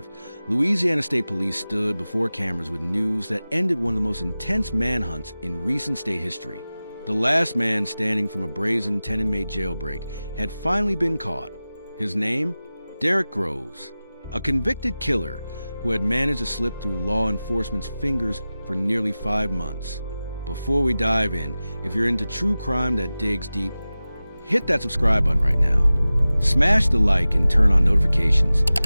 Louisiana State Police stood before cameras with news that ended one of the most intense manhunts in recent state history. The last man standing from a brazen 10-inmate jailbreak had finally been caught. His name? Derrick Groves, a convicted killer who had managed to slip through law enforcement's fingers for nearly 5 months. Before we dive in, if you're into true crime that digs deep, hit that subscribe button right now. Smash the like and turn on notifications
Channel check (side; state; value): both; inverted; correlation -0.96